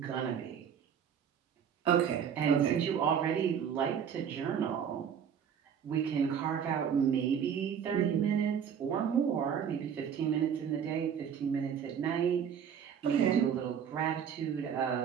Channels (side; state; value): left; quieter; 8.0 dB